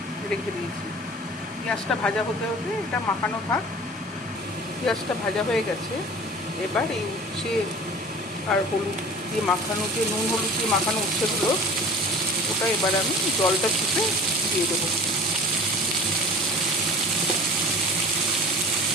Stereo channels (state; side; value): normal; both; correlation 0.42